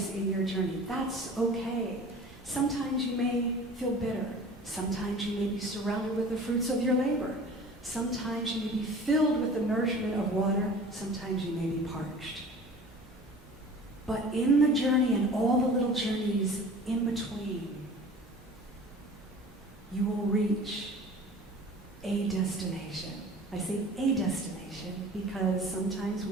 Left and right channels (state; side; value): normal; both; correlation 0.43